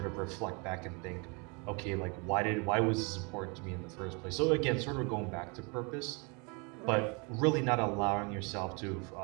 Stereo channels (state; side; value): quieter; left; 32.0 dB